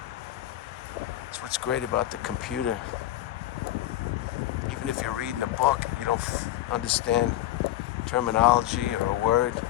That's what's great about the computer. Even if you're reading a book and you don't understand terminology or a word,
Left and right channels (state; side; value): quieter; right; 13.9 dB